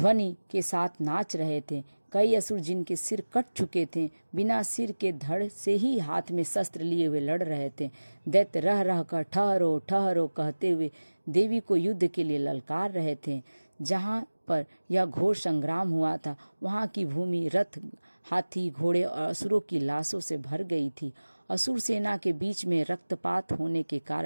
के साथ नाच रहे थे। कई असुर जिनके सिर कट चुके थे बिना सिर के धड़ से ही हाथ में शस्त्र लिए हुए लड़ रहे थे। दैत्य रह रह कर ठहरो ठहरो कहते हुए देवी को युद्ध के लिए ललकार रहे थे। जहाँ पर यह घोर संग्राम हुआ था वहाँ की भूमि रथ, हाथी, घोड़े और असुरों की लाशों से भर गई थी। असुर सेना के बीच में रक्तपात होने के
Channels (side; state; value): both; inverted; correlation -1.00